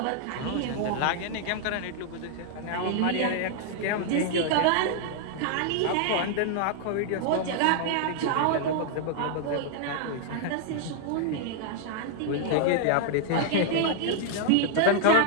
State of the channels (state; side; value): different; both; correlation 0.00